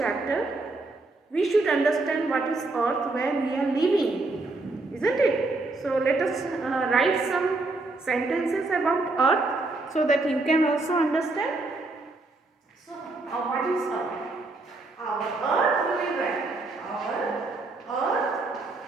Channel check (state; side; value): quieter; left; 3.3 dB